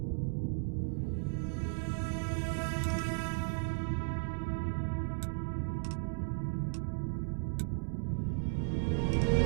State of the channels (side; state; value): left; silent; 54 dB below the other